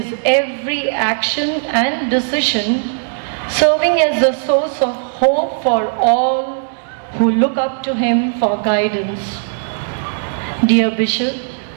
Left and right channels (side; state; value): left; silent; 65 dB below the other